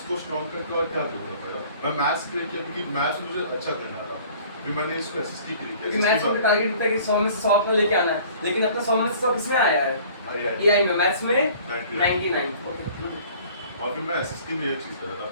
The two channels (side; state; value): both; inverted; correlation -0.51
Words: स्ट्रॉन्ग करके और क्या करूँगा मेरा, मैं मैथ्स क्रिएट किया क्योंकि मैथ्स मुझे अच्छा करना था, फिर मैंने इसको एसएसटी क्रिएट क्योंकि किया। मैथ्स में टारगेट होता है कि 100 में से 100 अपना लेके आना है, लेकिन अपना 100 में से 100 किसमें आया है? एआई में, मैथ्स में 99। ओके, और फिर मैं एसएसटी में ये चीज़ कर रहा